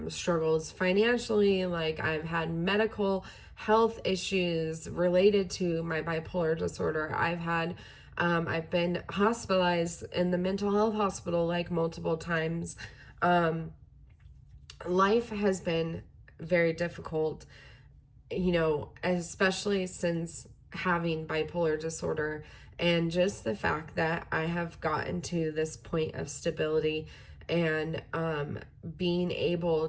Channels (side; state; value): both; identical; correlation 1.00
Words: struggles financially. Like, I've had medical health issues related to my bipolar disorder. I've been hospitalized in the mental health hospital like multiple times. Life has been very difficult, especially since having bipolar disorder, and just the fact that I have gotten to this point of stability, and being able